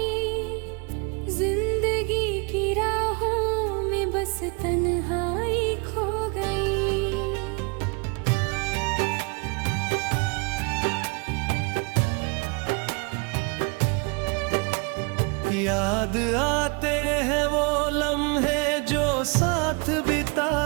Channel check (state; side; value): quieter; left; 32.0 dB